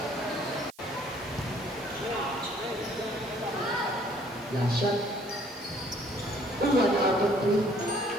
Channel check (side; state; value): right; noise; hiss, 25 dB below the sound